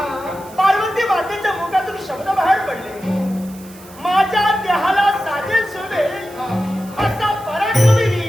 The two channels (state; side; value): noise; right; hiss, 21 dB below the sound